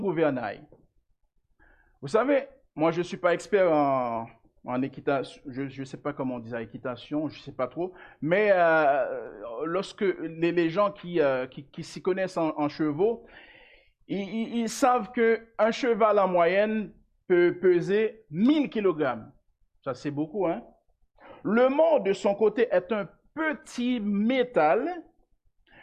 Vous savez, moi je ne suis pas expert en équitation, je ne sais pas comment on dit ça, équitation, je ne sais pas trop, mais lorsque les gens qui s'y connaissent en chevaux, ils savent qu'un cheval en moyenne peut peser 1000 kg. Ça, c'est beaucoup, hein? Le mors, de son côté, est un petit métal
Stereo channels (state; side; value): identical; both; correlation 1.00